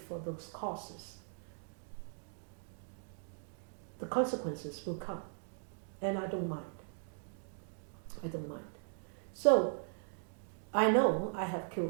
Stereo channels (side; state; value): left; silent; digital silence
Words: those costs. the consequences will come. And I don't mind. I don't mind. So, I know I have